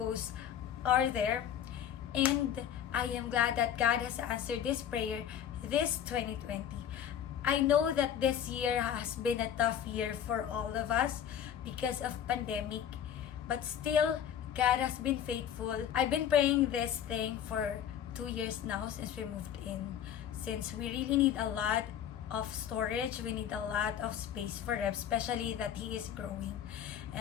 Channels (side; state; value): right; quieter; 9.5 dB